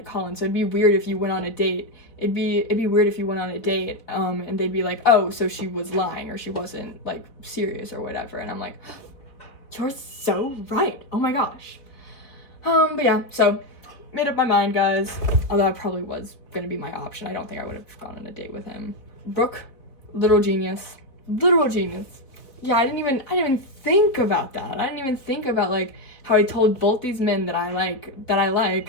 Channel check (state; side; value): late; right; 3.9 ms